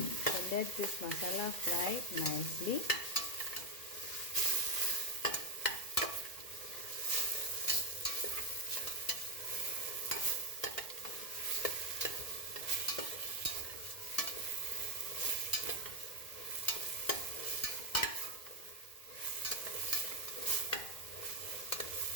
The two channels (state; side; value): late; right; 2.0 ms